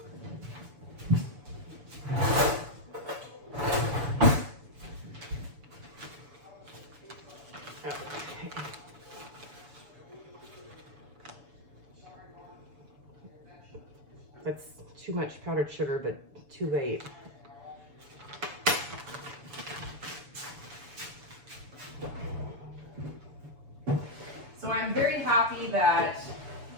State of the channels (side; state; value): left; late; 7.0 ms